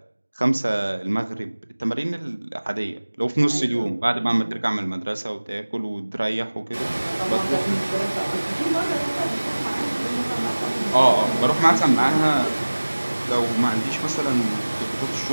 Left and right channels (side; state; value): both; inverted; correlation -1.00